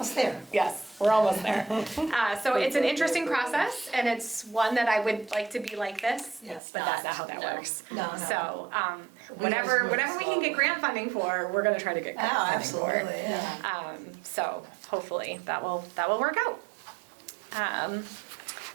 there. Yes, we're almost there. So it's an interesting process, and it's one that I would like to be like this, Yes. but that's not how that No. works. No, no. So, We always whatever move we can get grant funding for, we're gonna try to get Oh, grant funding for. absolutely, yeah. So hopefully that will work out.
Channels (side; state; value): left; drops out; at 6.6 s